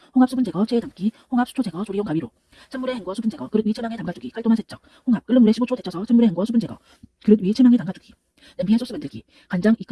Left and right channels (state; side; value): identical; both; correlation 1.00